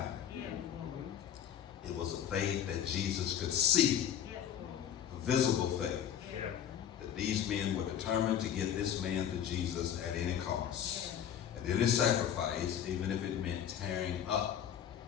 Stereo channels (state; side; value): quieter; right; 9.5 dB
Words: It was a faith that Jesus could see, a visible faith, that these men were determined to get this man to Jesus at any cost, at any sacrifice, even if it meant tearing up